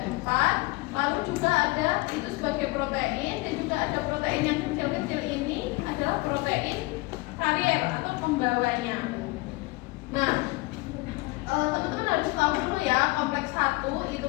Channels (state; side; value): quieter; right; 23.3 dB